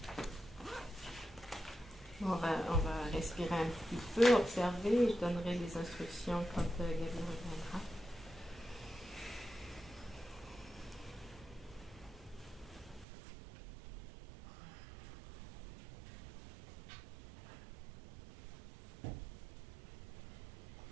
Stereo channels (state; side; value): drops out; left; at 13.1 s